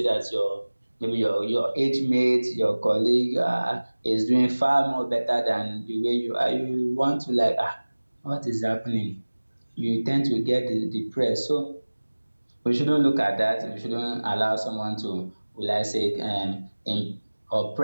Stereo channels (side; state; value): both; inverted; correlation -1.00